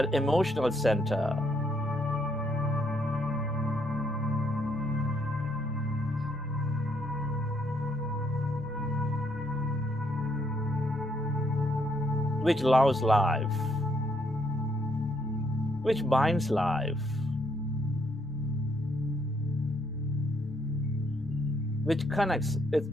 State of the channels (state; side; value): normal; both; correlation 0.72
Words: emotional center. Which loves life, which binds life, which connects